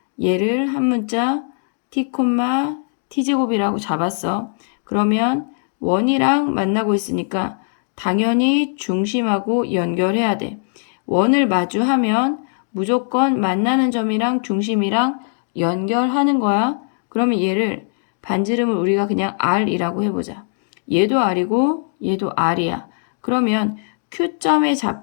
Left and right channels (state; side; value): silent; right; digital silence